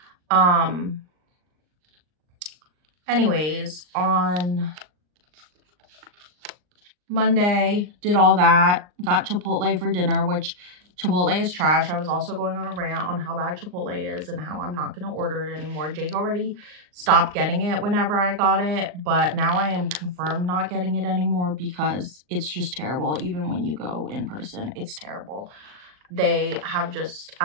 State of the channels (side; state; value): left; late; 39 ms